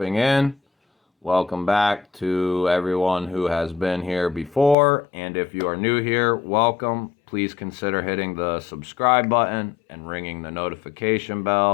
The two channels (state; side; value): drops out; right; at 4.8 s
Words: in. Welcome back to everyone who has been here before. And if you are new here, welcome. Please consider hitting the subscribe button and ringing the notification